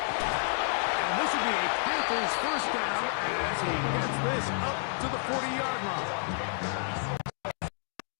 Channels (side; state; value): right; silent; 57 dB below the other